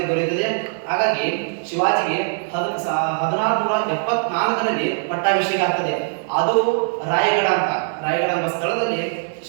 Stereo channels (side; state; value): left; silent; digital silence